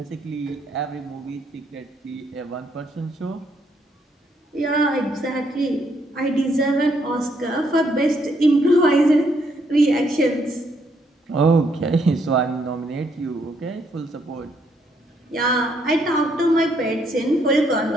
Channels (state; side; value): normal; both; correlation 0.72